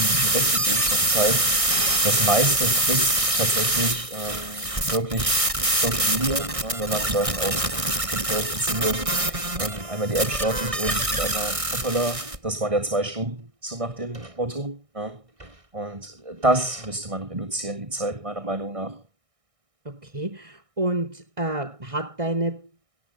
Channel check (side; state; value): left; late; 1.6 ms